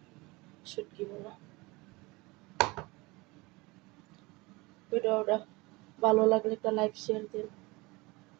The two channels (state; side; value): quieter; left; 23.7 dB